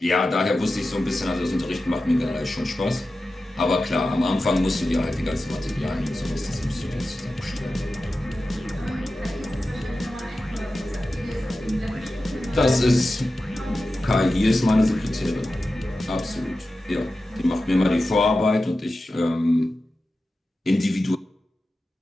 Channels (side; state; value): both; normal; correlation 0.93